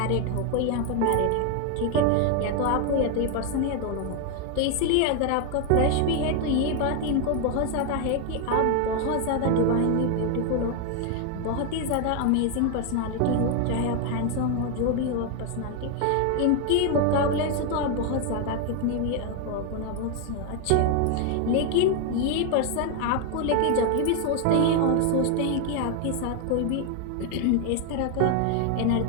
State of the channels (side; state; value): both; different; correlation 0.01